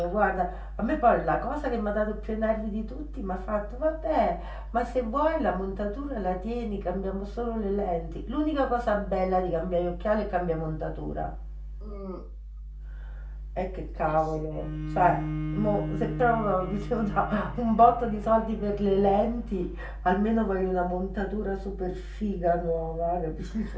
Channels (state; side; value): identical; both; correlation 1.00